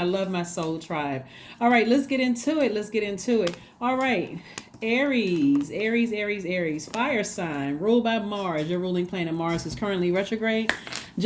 love my soul tribe. All right, let's get into it. Let's get into it. All right. Aries, Aries, Aries, Aries, fire sign, ruled by Mars. Your ruling planet Mars is currently retrograde,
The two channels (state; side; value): identical; both; correlation 1.00